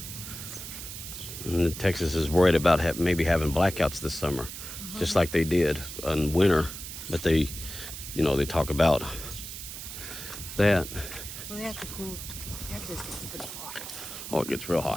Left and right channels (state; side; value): noise; right; hiss, 9 dB below the sound